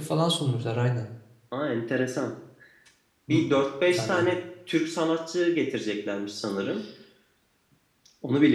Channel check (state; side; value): identical; both; correlation 1.00